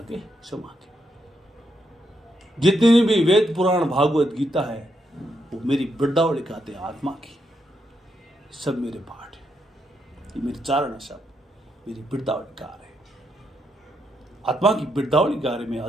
समा गए। जितनी भी वेद पुराण भागवत गीता है वो मेरी वृद्धावली कहते हैं आत्मा की। सब मेरे पाठ है, ये मेरे चारण है, सब मेरी वृद्धावली गा रहे। आत्मा की वृद्धावली गा रहे। मैं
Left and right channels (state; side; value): normal; both; correlation 0.80